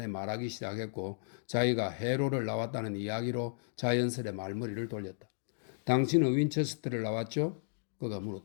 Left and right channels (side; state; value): right; silent; digital silence